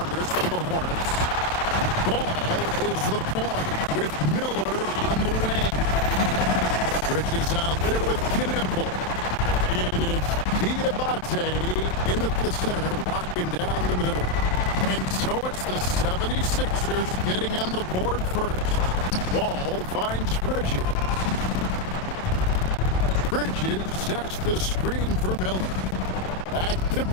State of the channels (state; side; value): late; right; 27 ms